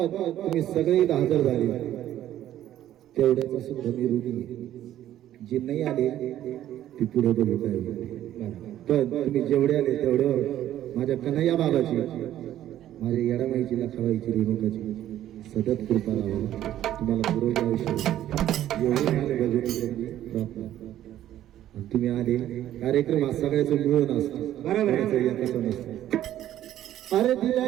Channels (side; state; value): left; quieter; 12.4 dB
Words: तुम्ही सगळे हजर झाले तेवढ्याचा सुद्धा मी ऋणी आहे. जे नाही आले ते पुढे बघू काय पण तुम्ही जेवढे आले तेवढ्यावर माझ्या कन्हैया बाबाची, माझ्या येडामाईची, लखाबाईची, रेणुकाची सतत कृपा राहावं. तुम्हाला पुरवलं आयुष्य एवढे माझ्या भजनी प्रार्थना. तुम्ही आले कार्यक्रम हा सगळ्याचं मिळून असतो, बरोबर कसं नसतं. अरे दिल्या